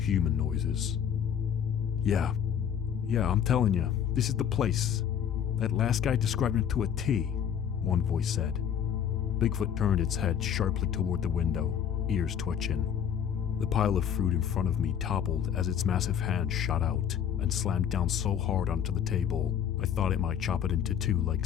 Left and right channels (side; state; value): right; quieter; 8.7 dB